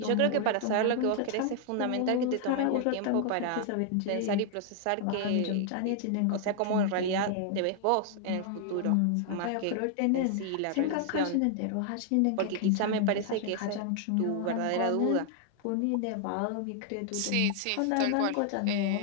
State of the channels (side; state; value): both; different; correlation 0.00